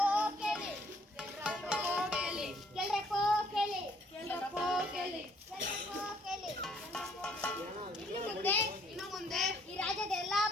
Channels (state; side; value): normal; both; correlation 0.64